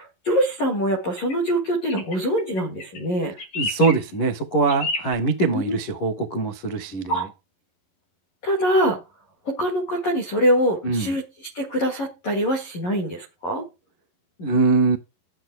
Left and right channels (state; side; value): late; right; 11 ms